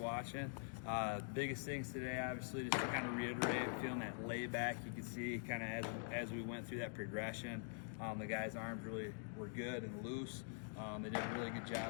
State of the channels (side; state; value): right; silent; digital silence